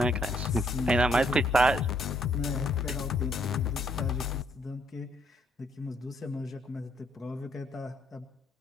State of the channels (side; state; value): both; normal; correlation 0.69